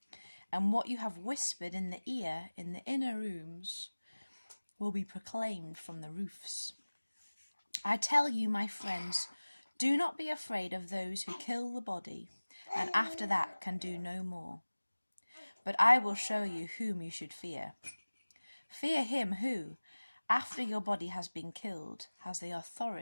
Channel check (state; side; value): inverted; both; correlation -1.00